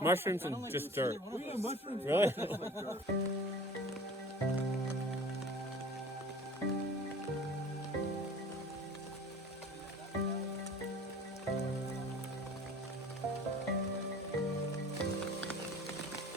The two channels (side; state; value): both; normal; correlation 0.44